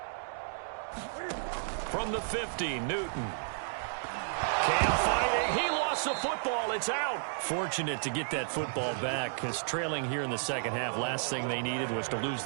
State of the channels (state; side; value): silent; left; digital silence